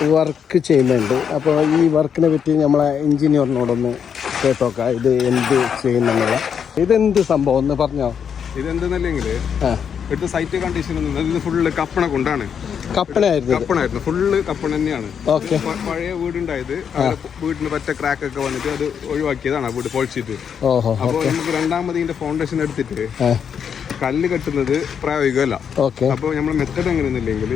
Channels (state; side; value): quieter; right; 7.5 dB